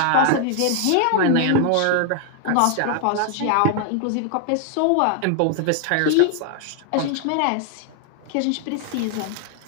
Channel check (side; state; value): both; different; correlation 0.00